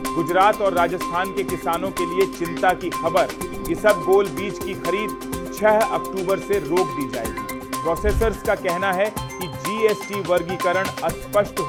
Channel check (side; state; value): both; identical; correlation 1.00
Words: गुजरात और राजस्थान के किसानों के लिए चिंता की खबर। इसबगोल बीज की खरीद 6 अक्टूबर से रोक दी जाएगी। प्रोसेसर्स का कहना है कि GST वर्गीकरण अस्पष्ट